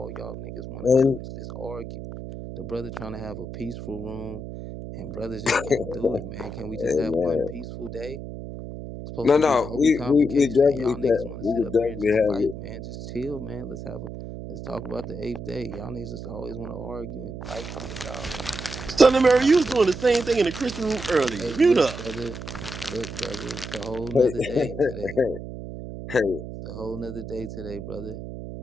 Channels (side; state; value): right; noise; hum, 9 dB below the sound